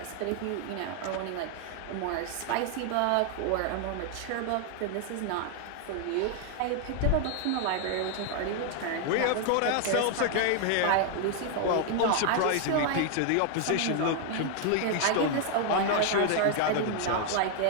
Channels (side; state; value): both; different; correlation 0.00